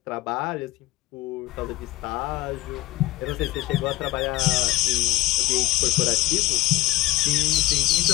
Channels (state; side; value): quieter; right; 18.1 dB